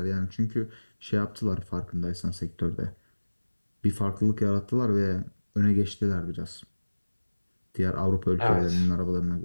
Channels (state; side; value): inverted; both; correlation -1.00